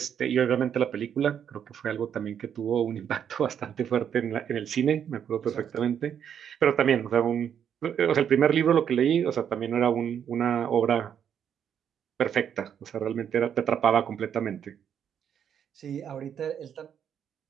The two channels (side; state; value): left; quieter; 8.6 dB